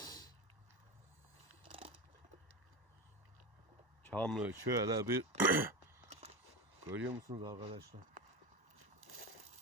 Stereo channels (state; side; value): late; left; 1.1 ms